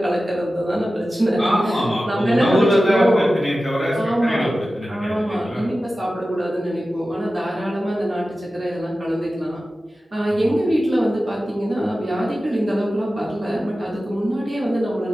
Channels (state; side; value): normal; both; correlation 0.95